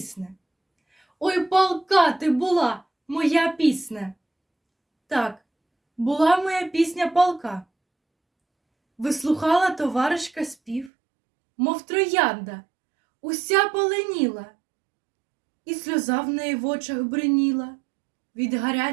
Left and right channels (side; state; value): left; drops out; at 10.9 s